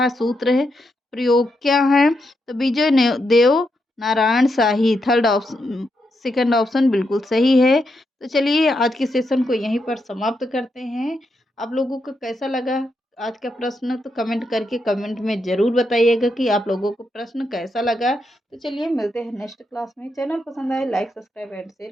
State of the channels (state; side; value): normal; both; correlation 0.82